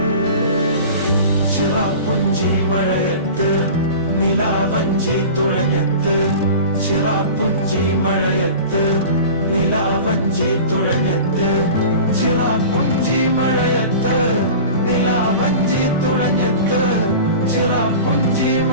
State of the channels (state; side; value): inverted; both; correlation -0.37